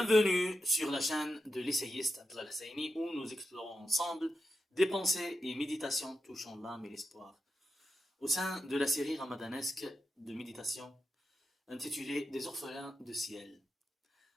sur la chaîne de l'essayiste Abdallah Husseini où nous explorons ensemble des pensées et méditations touchant l'âme et l'espoir. Au sein de la série ramadanesque de méditation intitulée Des orphelins de ciel.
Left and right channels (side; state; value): both; normal; correlation 0.89